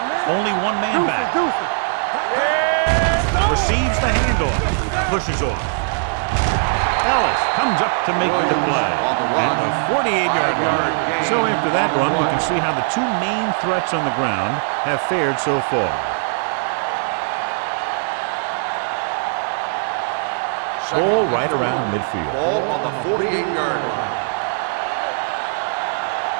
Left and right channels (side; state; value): left; silent; digital silence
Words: man. Only one man back. Yeah. Receives the handoff. Pushes off. Ellis comes up to make the play at the 48-yard line. So after that run, we can see how the two main threats on the ground have fared so far. Ball right around midfield. Ball on the 48-yard line.